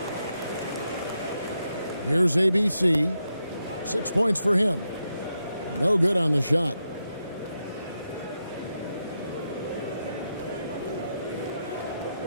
Here's ABC. 6 points for him. No good on the shot.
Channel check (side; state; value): both; inverted; correlation -0.84